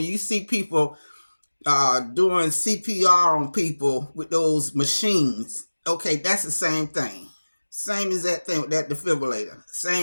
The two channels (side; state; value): both; inverted; correlation -1.00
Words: you see people doing CPR on people with those machines. Okay, that's the same thing. Same as that thing with that defibrillator.